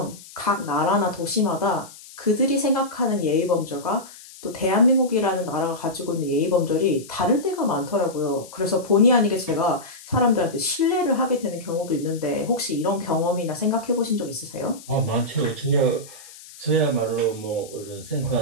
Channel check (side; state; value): left; noise; hiss, 19 dB below the sound